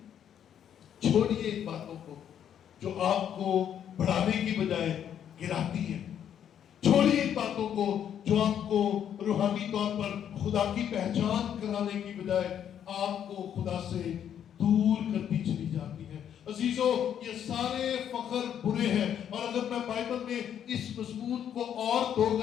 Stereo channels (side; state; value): right; quieter; 9.4 dB